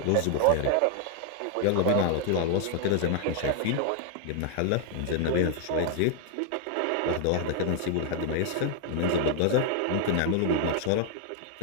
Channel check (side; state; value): both; different; correlation 0.00